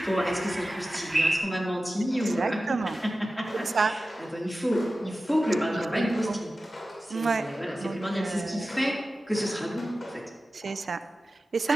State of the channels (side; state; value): both; normal; correlation 0.95